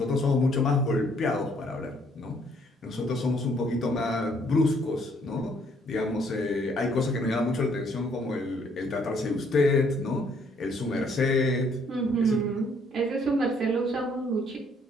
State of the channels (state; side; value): normal; both; correlation 0.65